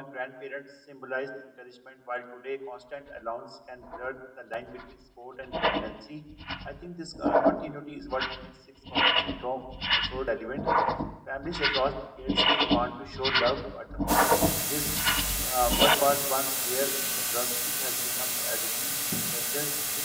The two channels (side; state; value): both; identical; correlation 1.00